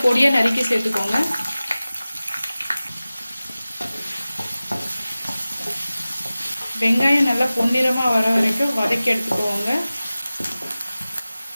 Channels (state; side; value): inverted; both; correlation -0.97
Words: பொடியாக நறுக்கி சேர்த்துக்கோங்க. வெங்காயம் நல்லா பொன்னிறமாக வர வரைக்கும் வதக்கி எடுத்துக்கோங்க.